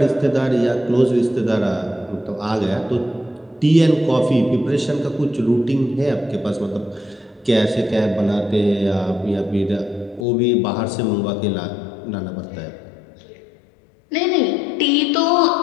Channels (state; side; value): drops out; right; at 10.2 s